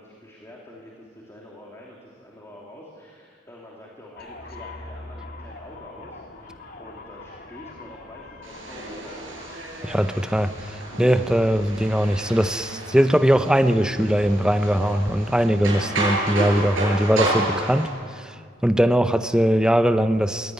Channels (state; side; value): normal; both; correlation 0.86